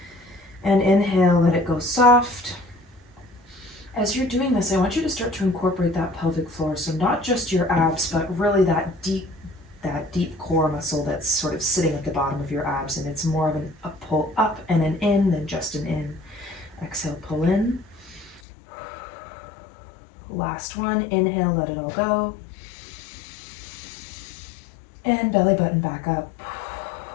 And inhale, let it go soft. As you're doing this, I want you to start to incorporate that pelvic floor. So not just your abs, but really that deep core muscle that's sort of sitting at the bottom of your abs. And it's more of a pull up and an in than just an in. Exhale, pull in. Last one, inhale, let it all go. And belly button back up.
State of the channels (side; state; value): right; drops out; at 18.4 s